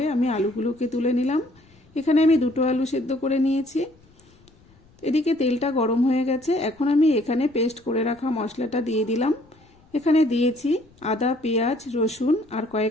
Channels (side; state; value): left; noise; rumble, 30 dB below the sound